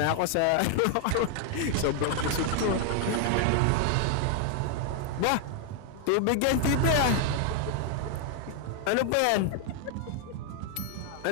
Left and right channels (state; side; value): different; both; correlation 0.00